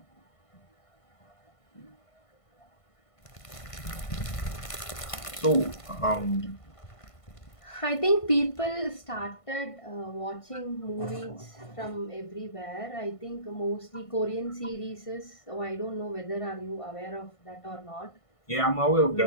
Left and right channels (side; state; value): right; late; 1.5 ms